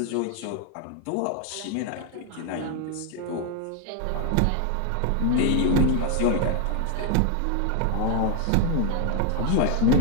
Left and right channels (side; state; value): both; different; correlation 0.00